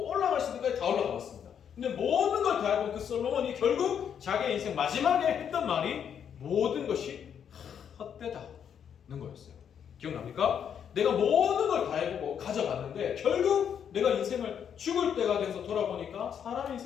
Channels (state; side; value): quieter; right; 8.2 dB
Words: 올라갈 수 있는 것까지 다 올라가봤습니다. 근데 모든 걸 다 해본 그 솔로몬이 결국 자기의 인생 마지막에 했던 말이 모든 것이 헛된 헛되다는 거였어요. 기억납니까? 내가 모든 걸 다 해보고 가져갔는데 결국 내가 인생을 죽을 때가 돼서 돌아보니까 사람